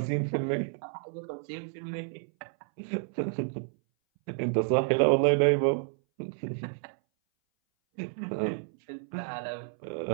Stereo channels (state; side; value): silent; left; 58 dB below the other